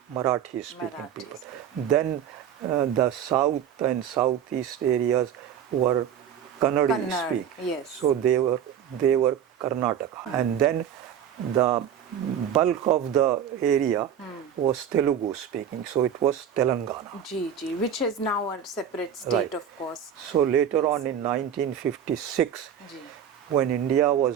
Marathi speaking people. Then the south and southeast areas were Kannada speak. Yes. So they were Karnataka. And then the bulk of the area was Telugu speaking. So it was Telangana. Which is now a separate state, Right. of course. So later on in 1956, when India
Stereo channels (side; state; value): left; quieter; 9.0 dB